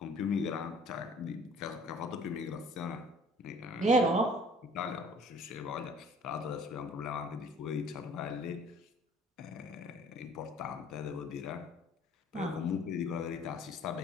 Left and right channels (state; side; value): normal; both; correlation 0.53